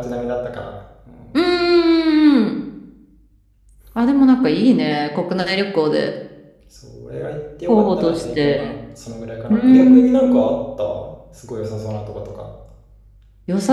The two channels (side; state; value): both; identical; correlation 1.00